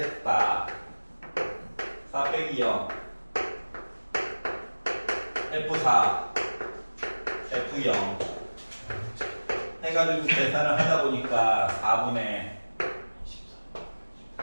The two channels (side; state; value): both; inverted; correlation -1.00